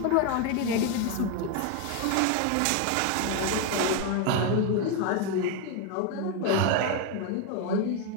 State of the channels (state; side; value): different; both; correlation 0.01